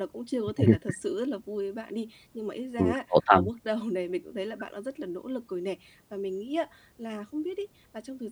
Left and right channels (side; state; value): both; identical; correlation 1.00